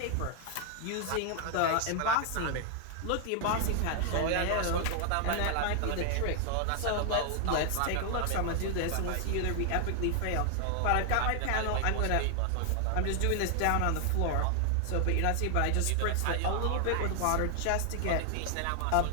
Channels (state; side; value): different; both; correlation 0.00